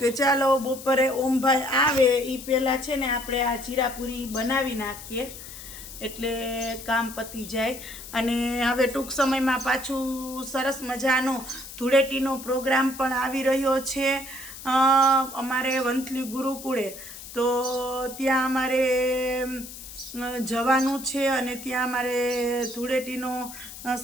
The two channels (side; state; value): left; noise; hiss, 13 dB below the sound